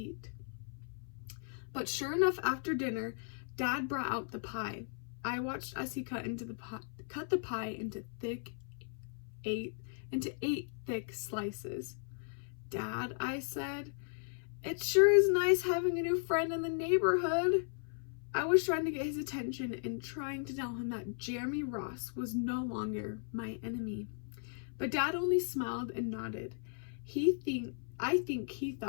But sure enough, after dinner, Dad brought out the pie. I watched as he cut the pie into eight thick slices. Dad, I said, it sure is nice having a new friend in the neighborhood. I was trying to get his attention and trying to tell him that Jeremy Ross was no longer my enemy. But Dad only smiled and nodded. I think he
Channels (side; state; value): right; silent; 53 dB below the other